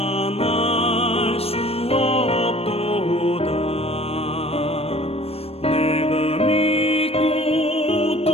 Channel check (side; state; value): right; late; 0.29 ms